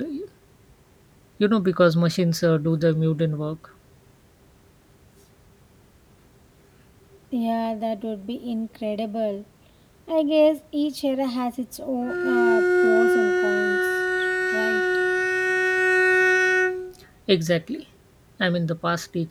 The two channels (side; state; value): both; identical; correlation 1.00